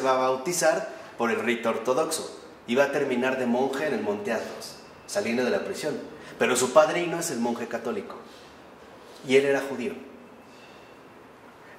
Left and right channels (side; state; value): both; identical; correlation 1.00